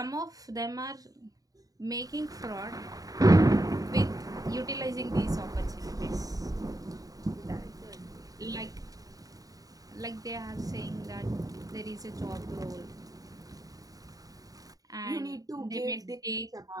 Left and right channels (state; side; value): late; left; 0.18 ms